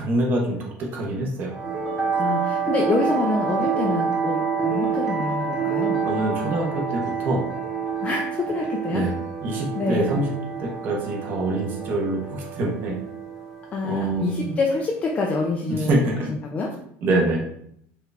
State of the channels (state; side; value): normal; both; correlation 0.54